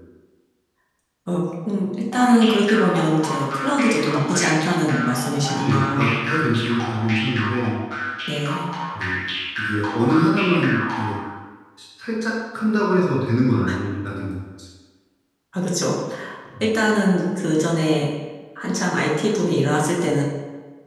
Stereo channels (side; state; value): both; identical; correlation 1.00